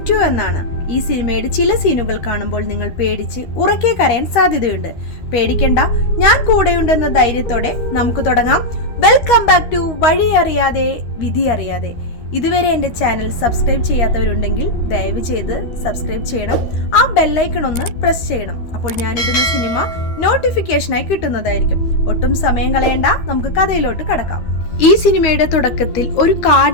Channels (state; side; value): late; right; 13 ms